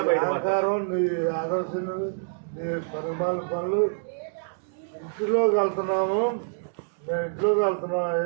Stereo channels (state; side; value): silent; left; digital silence